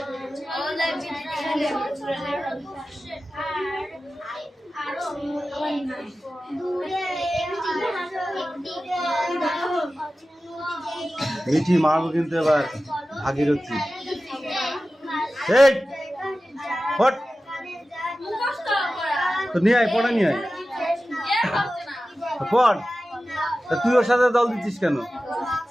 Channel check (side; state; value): both; normal; correlation 0.95